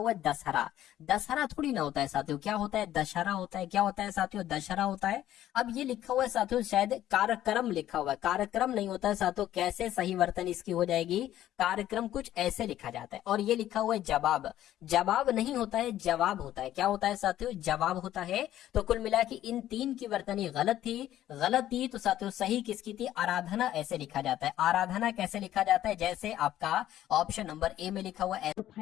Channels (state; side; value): quieter; right; 12.7 dB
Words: है दशहरा। दशहरा थोड़ी ना होता है साथियों। क्या होता है? दशहरा होता है। क्या होता है साथियों? दशहरा होता है। अब ये लिखा हुआ है साथियों, शायद कार्यक्रम लिखा हुआ है। कार्यक्रम नहीं होता है साथियों। कैसे सही वर्तनी इसकी हो जाएगी? कार्यक्रम कुछ ऐसे लिखा जाता है। और ये लिखा हुआ है जवाब। जवाब नहीं होता है, जवाब होता है। क्या होता है साथियों? जवाब होता है। तो कुल मिला कि इन तीन की वर्तनी गलत थी। गलत थी तो साथियों सही किसकी थी? आराधना ऐसे लिखा जाता है। आराधना कैसे लिखा जाता है? जैसे आपका ऑप्शन नंबर ए में लिखा हुआ है।